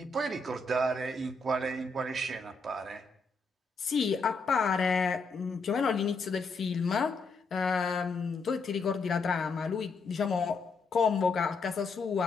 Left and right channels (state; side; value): quieter; right; 3.8 dB